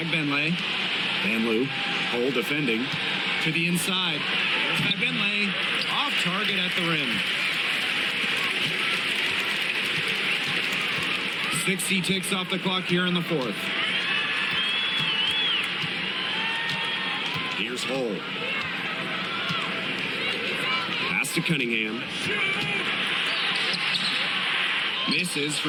Van Loo. Hole defending. To the inside. There's Bagbenley. Off target at the rim. 60 ticks off the clock here in the fourth. Here's Hull. Pass to Cunningham. Misses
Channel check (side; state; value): both; identical; correlation 1.00